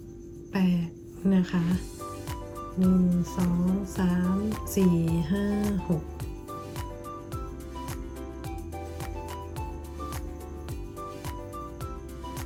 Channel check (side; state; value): both; identical; correlation 1.00